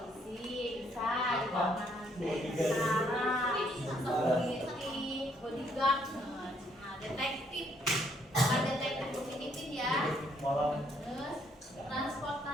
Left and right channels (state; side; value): normal; both; correlation 0.69